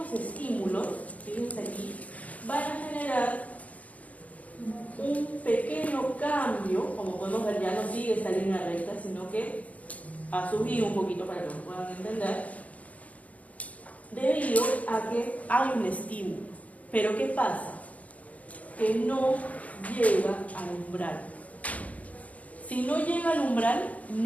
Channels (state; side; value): late; right; 0.070 ms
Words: estímulos, fíjense aquí, van a generar un pequeño cambio, como podemos ver, ya no sigue esta línea recta, sino que ha subido un poquito para que lo puedan entender, debido a que hay un estímulo. Pero ¿qué pasa? Que no llega al umbral. Si no llega al umbral,